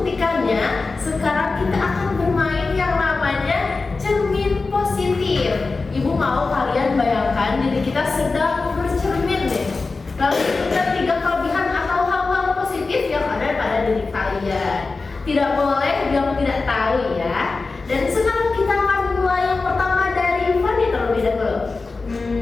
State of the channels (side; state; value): right; quieter; 3.9 dB